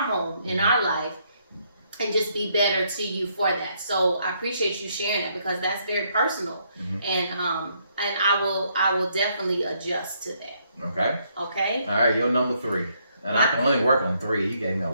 home, in our life? and just be better to you for that. So I appreciate you sharing that because that's very personal, and I will definitely adjust to that. Okay. Okay. All right, your number 3, and I can only work on 3. You gave me a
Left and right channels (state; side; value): inverted; both; correlation -0.72